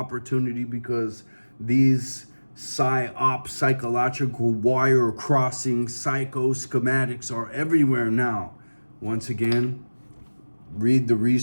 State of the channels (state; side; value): inverted; both; correlation -1.00